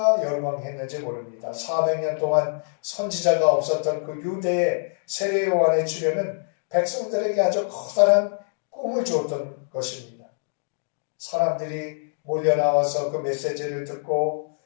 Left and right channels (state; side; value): silent; right; digital silence